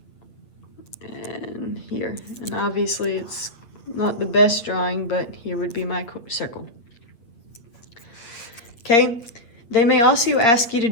And here. And obviously it's not the best drawing, but here would be my circle. Okay. They may also ask you to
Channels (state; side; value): late; right; 8.5 ms